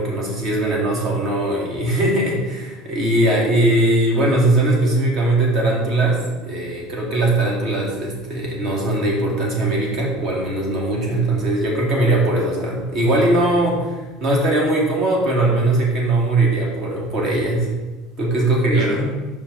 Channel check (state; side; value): normal; both; correlation 0.43